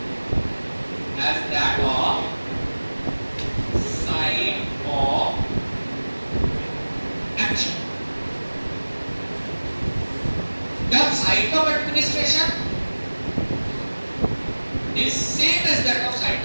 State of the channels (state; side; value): inverted; both; correlation -1.00